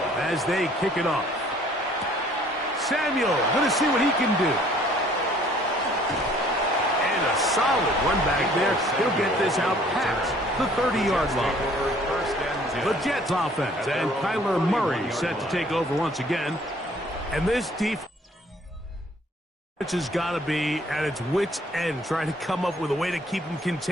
as they kick it off. Samuel, going to see what he can do. And a solid run back there. He'll get this out past the 30-yard line. The Jets offense and Kyler Murray set to take over once again. And this defense has got to be at its wits' end, trying to come up with a way to keep him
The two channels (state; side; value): normal; both; correlation 0.58